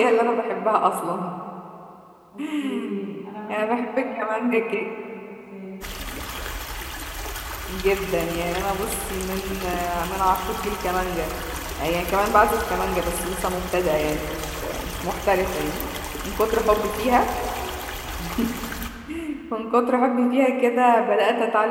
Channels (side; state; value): both; identical; correlation 1.00